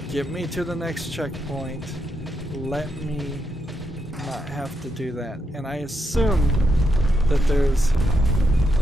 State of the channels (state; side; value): normal; both; correlation 0.81